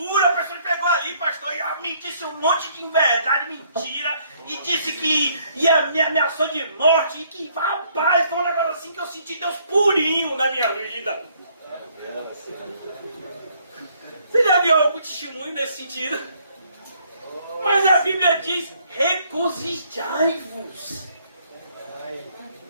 A pessoa pegou ali, pastor, e me disse um monte de inverdade, mentira, e disse que me ameaçou de morte, e que, rapaz, foi um negócio assim que eu senti Deus purinho na minha vida. Você já viu algum testemunho nesse sentido? Mas a Bíblia diz, regozijai-vos.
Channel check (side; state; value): both; inverted; correlation -0.65